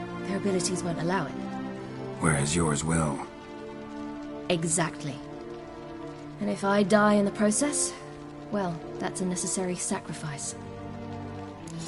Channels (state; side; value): identical; both; correlation 1.00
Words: Their abilities won't allow it. Whereas yours will. Exactly. And if I die in the process, well, that's a necessary sacrifice.